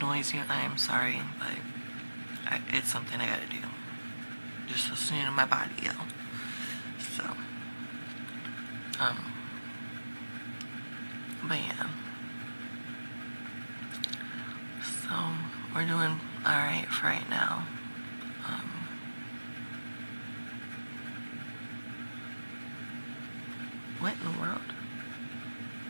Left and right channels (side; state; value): both; inverted; correlation -1.00